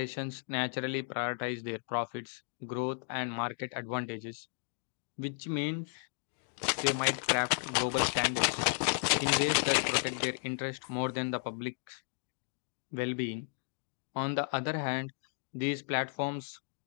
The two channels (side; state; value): right; silent; digital silence